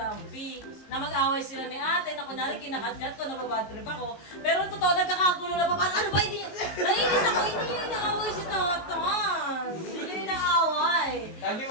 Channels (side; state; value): right; late; 19 ms